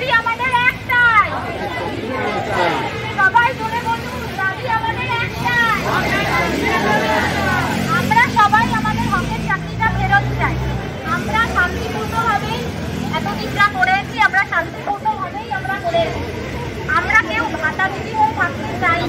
আমাদের একটাই, সবাই জোরে বলুন, দাবি আমাদের একটাই। আমরা সবাই আমাদের হকের চাকরিটা ফেরত চাই। আমরা শান্তিপূর্ণভাবে এতদিন যা করেছি, আমরা শান্তিপূর্ণভাবেই আমরা করেছি। আমরা কেউ ভাতাভুগি হয়ে থাকতে চাই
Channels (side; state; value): both; identical; correlation 1.00